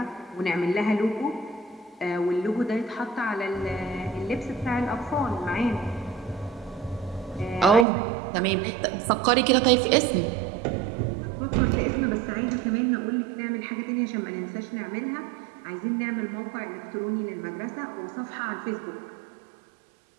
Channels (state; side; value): drops out; left; at 7.9 s